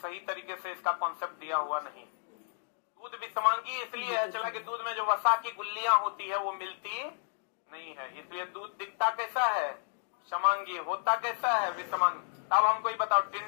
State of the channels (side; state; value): right; silent; digital silence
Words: तरीके से इसका कॉन्सेप्ट दिया हुआ नहीं। दूध विषमांगी इसलिए है चला कि दूध में जो वसा की गुल्लियां होती है वो मिलती नहीं है, इसलिए दूध दिखता कैसा है? समांगी। होता कैसा है? विषमांगी। अब हमको ये बताओ,